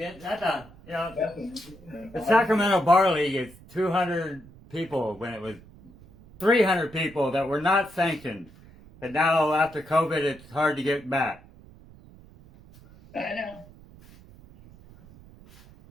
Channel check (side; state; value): right; noise; rumble, 22 dB below the sound